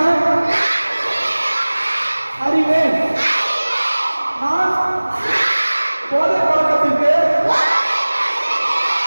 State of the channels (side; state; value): both; inverted; correlation -1.00